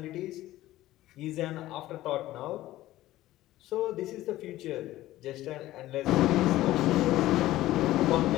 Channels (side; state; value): right; quieter; 15.6 dB